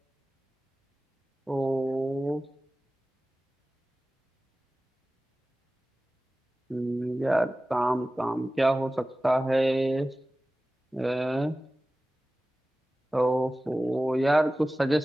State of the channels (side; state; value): both; normal; correlation 0.96